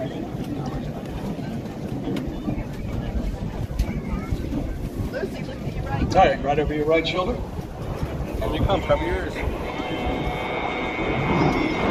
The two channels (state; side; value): identical; both; correlation 1.00